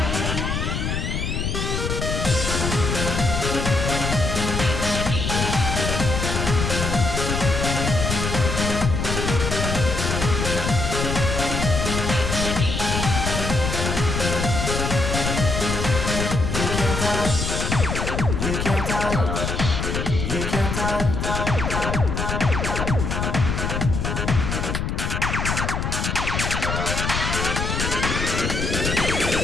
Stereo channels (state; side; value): noise; left; rumble, 1 dB below the sound